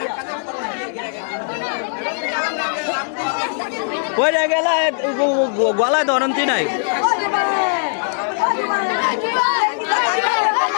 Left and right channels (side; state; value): right; silent; digital silence